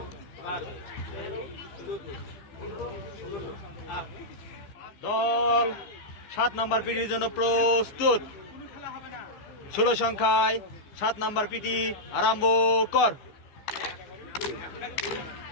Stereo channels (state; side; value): late; right; 14 ms